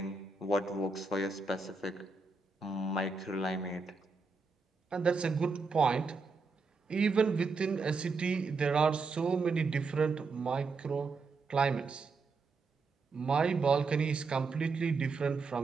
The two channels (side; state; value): left; quieter; 4.3 dB